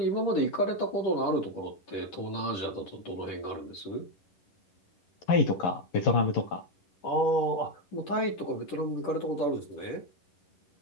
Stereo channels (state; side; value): late; right; 10 ms